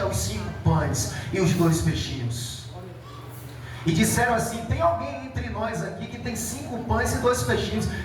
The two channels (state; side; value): identical; both; correlation 1.00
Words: os 5 pães e os 2 peixinhos. E disseram assim: tem alguém entre nós aqui que tem 5 pães e 2 peixinhos?